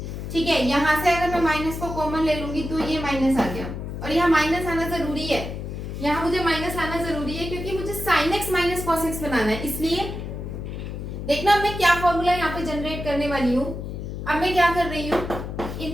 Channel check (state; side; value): noise; left; hum, 7 dB below the sound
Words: ठीक है। यहां से अगर मैं माइनस को कॉमन ले लूंगी तो ये माइनस आ गया, और यहाँ माइनस आना जरूरी है, यहाँ मुझे माइनस आना जरूरी है क्योंकि मुझे sine x minus cos x बनाना है। इसलिए देखना मैं क्या फॉर्मूला यहाँ पे जनरेट करने वाली हूँ। अब मैं क्या कर रही हूँ,